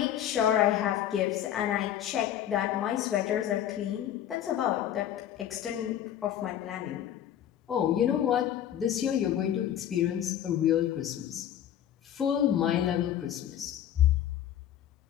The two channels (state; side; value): quieter; right; 10.8 dB